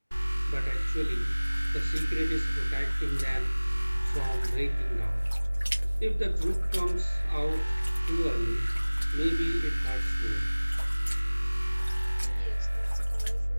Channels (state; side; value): inverted; both; correlation -1.00